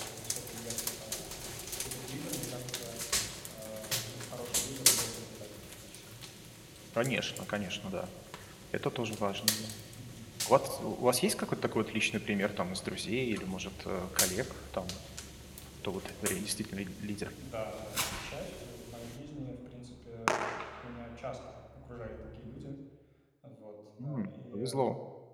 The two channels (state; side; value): identical; both; correlation 1.00